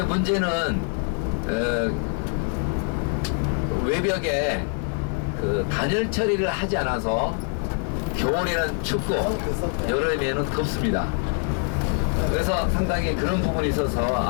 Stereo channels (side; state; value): right; quieter; 38.1 dB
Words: 문제는 외벽에 그 단열 처리를 하지 않아서 겨울에는 춥고 여름에는 덥습니다. 그래서 상당히 그런 부분이 있어서